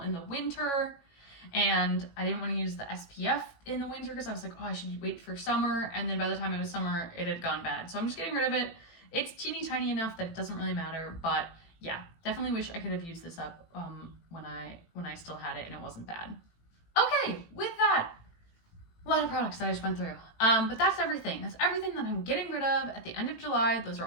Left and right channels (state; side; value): late; right; 18 ms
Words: the winter, and I didn't want to use the SPF in the winter because I was like, oh, I should wait for summer, and then by the time it was summer, it had gone bad. So I'm just getting rid of it. It's teeny tiny enough that it doesn't really matter, but yeah, definitely wish I could have used this up when I still had it and it wasn't bad. Okay, with that, A lot of products that I just went through. But that's everything. That's everything that I'm getting rid of at the end of July. Those are